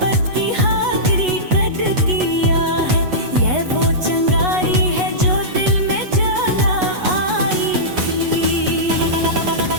की हकीकत किया है। ये वो चंगारी है जो दिल में जला आई थी।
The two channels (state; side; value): late; left; 8.2 ms